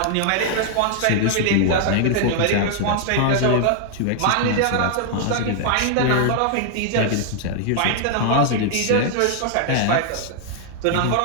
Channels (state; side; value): different; both; correlation 0.00